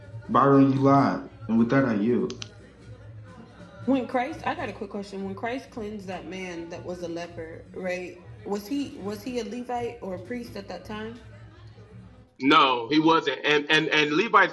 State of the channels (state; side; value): identical; both; correlation 1.00